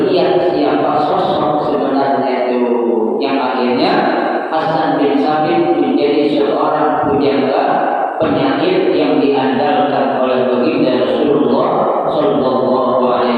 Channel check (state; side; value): identical; both; correlation 1.00